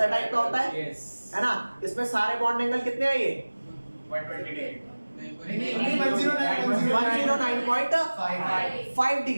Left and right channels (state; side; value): inverted; both; correlation -1.00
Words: टाइप का होता है, है ना? इसमें सारे बॉन्ड एंगल कितने हैं? ये 109.5